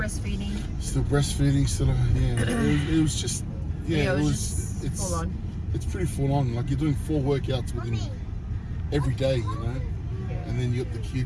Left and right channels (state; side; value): identical; both; correlation 1.00